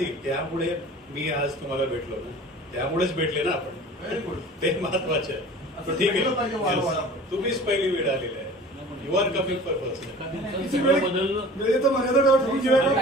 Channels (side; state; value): both; normal; correlation 0.42